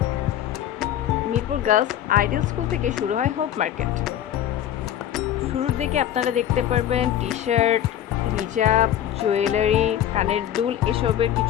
Mirpur girls ideal school থেকে শুরু হয় হোপ মার্কেট। শুরুর দিকে আপনারা দেখতে পারবেন টি শার্ট, হিজাব, জুয়েলারি, কানের দুল এসবের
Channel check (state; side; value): quieter; right; 11.1 dB